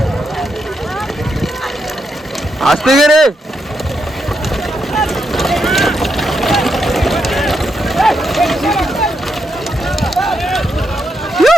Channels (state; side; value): normal; both; correlation 0.82